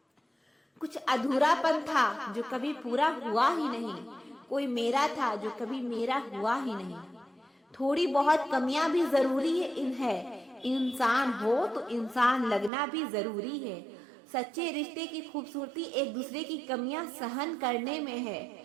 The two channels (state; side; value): drops out; left; at 12.7 s